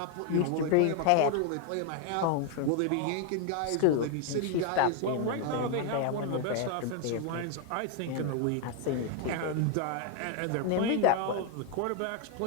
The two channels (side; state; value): both; different; correlation 0.01